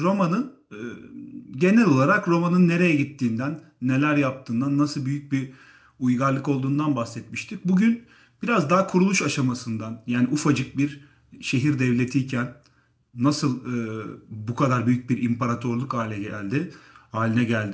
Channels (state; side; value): identical; both; correlation 1.00